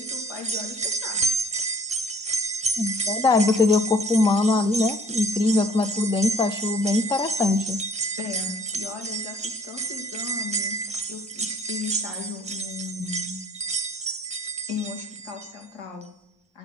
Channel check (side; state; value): both; normal; correlation 0.58